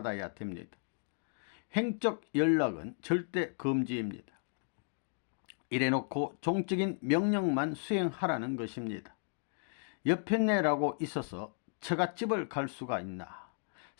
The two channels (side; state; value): right; silent; digital silence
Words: 됩니다. 횡적 연락은 절대 금지입니다. 이래놓고 종적인 명령만 수행하라는 것입니다. 여편네라고 있어서 처갓집을 갈 수가 있나.